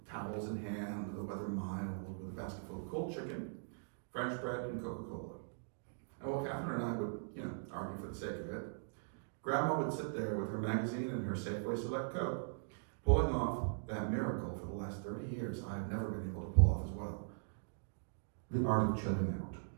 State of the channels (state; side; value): silent; left; digital silence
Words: towels in hand, the weather mild, with a basket full of cold chicken, French bread, and Coca-Cola. And while Catherine and I would, argue for the sake of it, Grandma would sit there with her magazine and her Safeway Select Coke, pulling off that miracle for the last 30 years I've never been able to pull off as well. The art of chilling out.